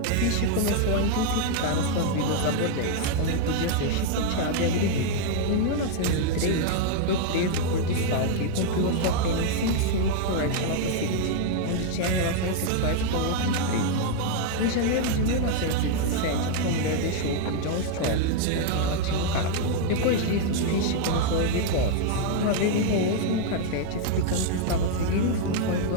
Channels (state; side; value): different; both; correlation 0.00